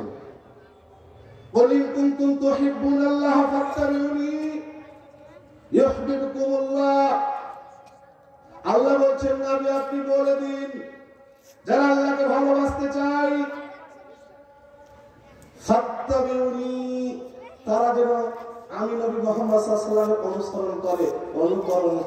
কুল ইন কুনতুম তুহিব্বুনাল্লাহ ফাত্তাবিউনি ইউহিব্বুকুমুল্লাহ। আল্লাহ বলছেন নবী আপনি বলে দিন যারা আল্লাহকে ভালোবাসতে চায় ফাত্তাবিউনি, তারা যেন আমি নবী মুহাম্মদ সাল্লাল্লাহু আলাইহি ওয়াসাল্লামের অনুসরণ করে, অনুকরণ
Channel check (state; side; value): identical; both; correlation 1.00